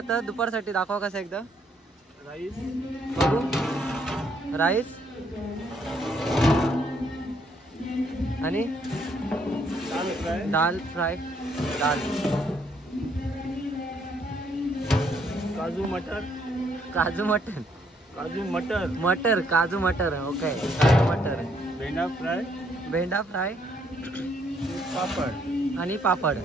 दुपारसाठी दाखवा कसं एकदा. राईस, बघू. राईस आणि दाल फ्राय, दाल फ्राय, दाल काजू मटर, काजू मटन, काजू मटर, मटर काजू मटर. ओके, काजू मटर, भेंडा फ्राय, भेंडा फ्राय पापड आणि पापड.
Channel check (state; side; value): normal; both; correlation 0.70